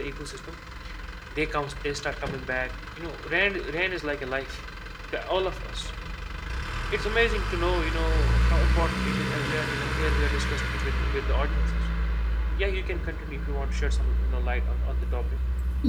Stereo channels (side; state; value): both; identical; correlation 1.00